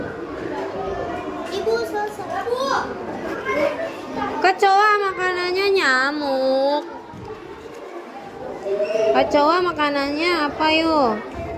Ibu selesai. Kecoa makanannya apa yuk?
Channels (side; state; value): both; identical; correlation 1.00